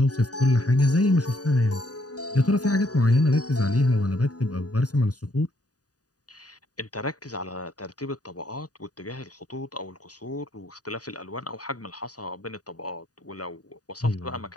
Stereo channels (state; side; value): late; right; 0.68 ms